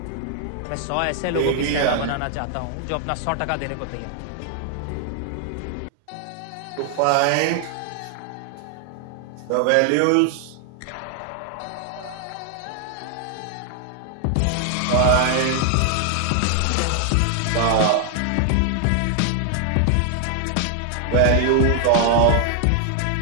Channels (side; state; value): both; different; correlation 0.00